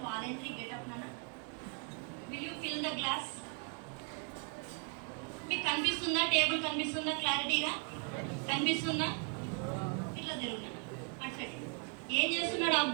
volunteer get up నాన్న. Will you fill the glass? మీకు కనిపిస్తుందా? టేబుల్ కనిపిస్తుందా? క్లారిటీగా కనిపిస్తుందా? ఇట్లా తిరుగునా అటు సైడ్. ఏం చేస్తున్నాడు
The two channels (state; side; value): quieter; left; 36.2 dB